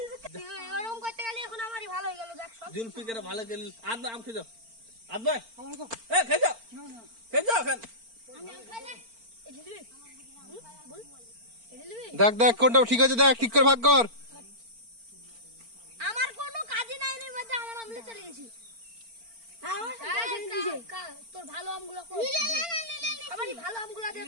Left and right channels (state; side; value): late; left; 4.4 ms